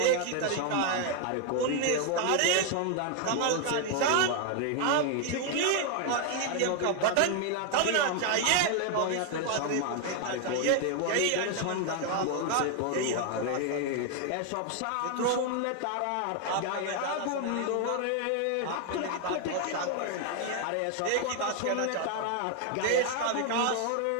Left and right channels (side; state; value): both; different; correlation 0.00